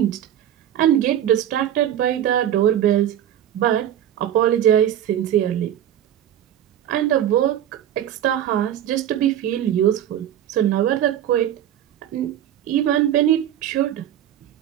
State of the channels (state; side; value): quieter; left; 11.0 dB